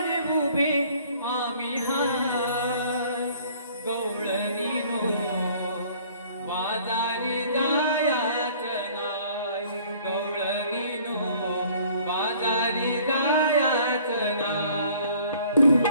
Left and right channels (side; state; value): both; inverted; correlation -0.55